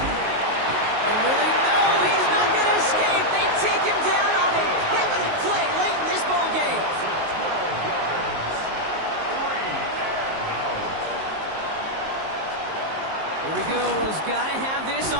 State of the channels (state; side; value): late; left; 19 ms